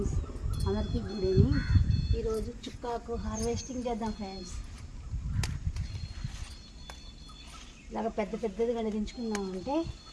అందరికీ good evening. ఈరోజు చుక్కాకు harvesting చేద్దాం ఫ్రెండ్స్. ఇలాగ పెద్ద పెద్దదిగా దించుకున్నామంటే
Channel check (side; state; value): both; identical; correlation 1.00